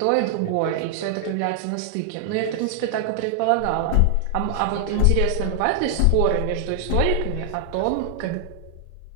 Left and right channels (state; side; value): different; both; correlation 0.00